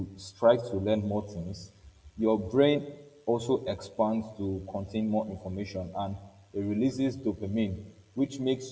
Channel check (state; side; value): identical; both; correlation 1.00